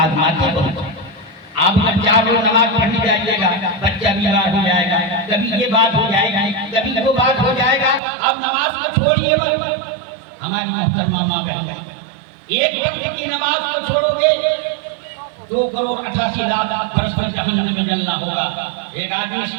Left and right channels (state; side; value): drops out; left; at 8.0 s